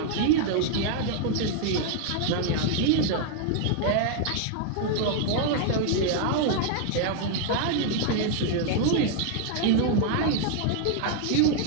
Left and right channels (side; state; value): both; different; correlation 0.00